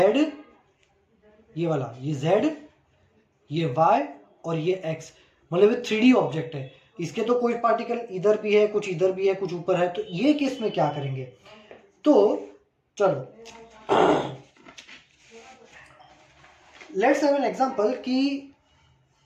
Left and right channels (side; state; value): both; identical; correlation 1.00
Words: ये वाला, ये z, ये y और ये x, मतलब ये 3D ऑब्जेक्ट है। इसके तो कोई पार्टिकल इधर भी है, कुछ इधर भी है, कुछ ऊपर है। तो ये केस में क्या करेंगे, तो चलो लेट्स हैव एन एग्जांपल की